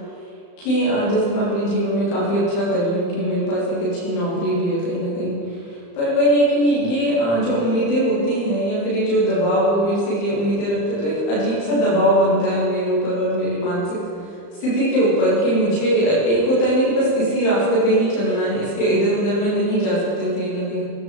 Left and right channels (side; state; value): right; late; 35 ms